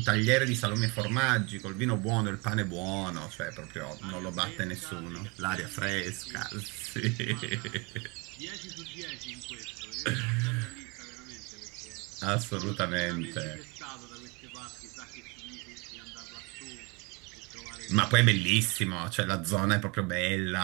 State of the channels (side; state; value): left; quieter; 29.0 dB